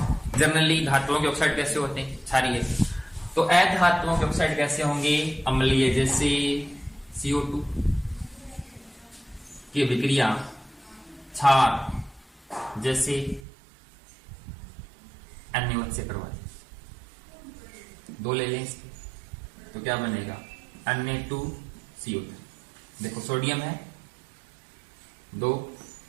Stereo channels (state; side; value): drops out; left; at 13.4 s